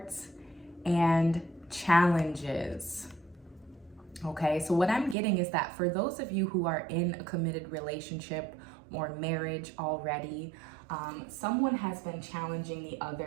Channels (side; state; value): left; drops out; at 5.2 s